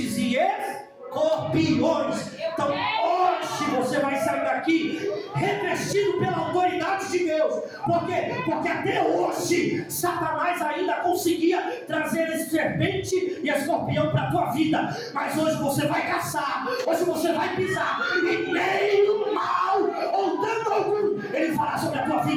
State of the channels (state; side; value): identical; both; correlation 1.00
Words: e escorpiões. Então hoje você vai sair daqui revestido pela autoridade de Deus. Por quê? Porque até hoje Satanás ainda conseguia trazer esse serpente e escorpião para a tua vida. Mas hoje você vai caçar, hoje você vai pisar, e nem o mal ou dano algum ele fará sobre a tua